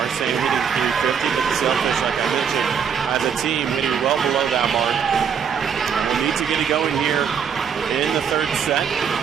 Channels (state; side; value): quieter; left; 7.3 dB